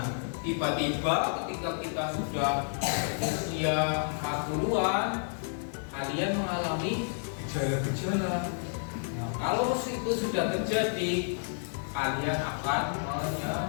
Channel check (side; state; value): right; silent; digital silence